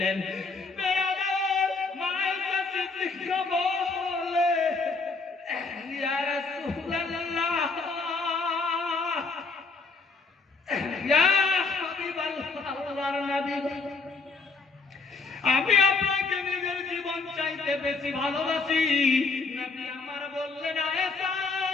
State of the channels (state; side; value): quieter; right; 4.1 dB